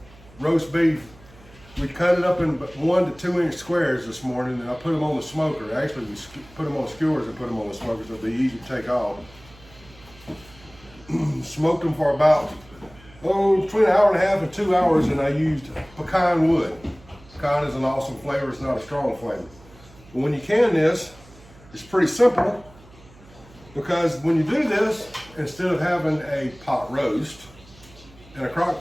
roast beef. We cut it up in 1 to 2 inch squares this morning, and I put them on the smoker. Actually, we put them on skewers and put them on the smoker, so it'll be easy to take off. Smoked them for about, between an hour and a half and 2 hours, and I used pecan wood. Pecan is an awesome flavor, it's not a strong flavor. But when you can this, it's pretty simple, because when you do this, instead of having a pot roast in a crock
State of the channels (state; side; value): noise; right; hum, 24 dB below the sound